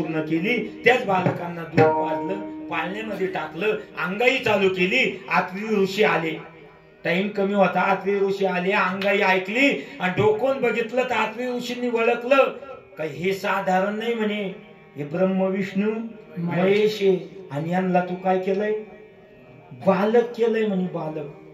केली. त्याच बालकांना दूध पाजलं, पाळण्यामध्ये टाकलं, अंगाई चालू केली. आत्री ऋषी आले. टाइम कमी होता. आत्री ऋषी आले, अंगाई ऐकली आणि डोकून बघितलं तर आत्री ऋषींनी ओळखलं का हे साधारण नाही म्हणे, हे ब्रह्म विष्णू महेश आणि यांना तू काय केलंय, बालक केलंय म्हणे. बालक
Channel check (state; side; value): identical; both; correlation 1.00